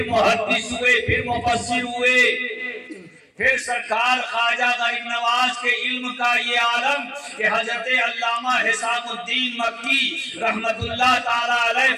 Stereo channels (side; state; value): both; identical; correlation 1.00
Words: محدث ہوئے، پھر مفسر ہوئے، پھر سرکار خواجہ غریب نواز کے علم کا یہ عالم کہ حضرت علامہ حسام الدین مکی رحمت اللہ تعالیٰ علیہ